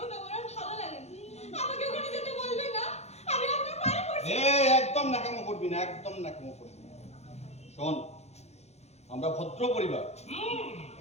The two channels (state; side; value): late; right; 0.31 ms